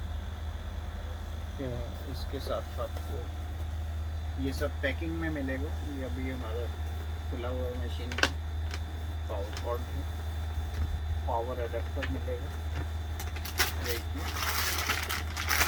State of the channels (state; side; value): identical; both; correlation 1.00